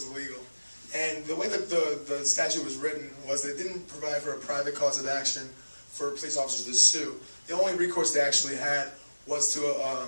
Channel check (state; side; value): inverted; both; correlation -1.00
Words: illegal. And the way that the statute was written was that it didn't provide for a private cause of action for police officers to sue. The only recourse they actually had was to